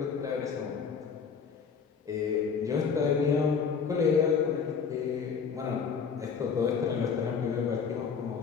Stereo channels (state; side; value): quieter; right; 6.2 dB